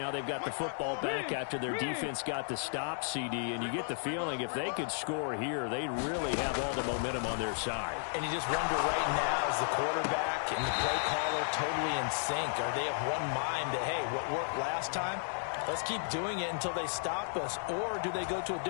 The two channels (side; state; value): right; silent; digital silence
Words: they've got the football back after their defense got the stop, CD. And you get the feeling if they could score here, they really have all the momentum on their side. And you just wonder right now, is the quarterback and the play caller totally in sync? Are they of one mind that, hey, what worked last time? Let's keep doing it until they stop us. Or do they go to a